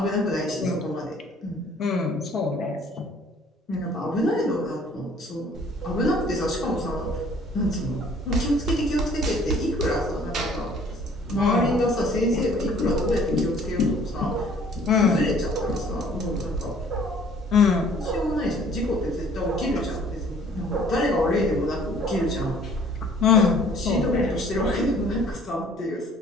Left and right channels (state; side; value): normal; both; correlation 0.55